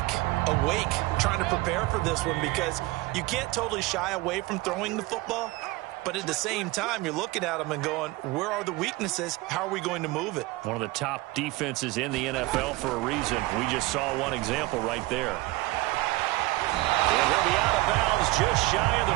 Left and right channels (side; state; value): left; quieter; 20.4 dB